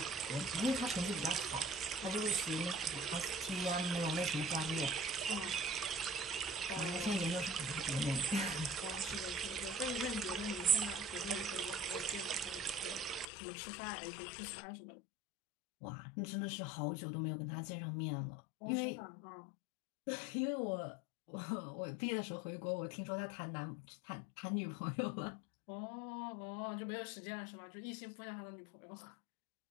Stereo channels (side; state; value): right; drops out; at 13.2 s